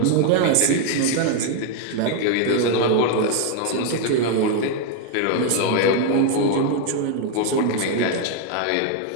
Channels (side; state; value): both; different; correlation 0.00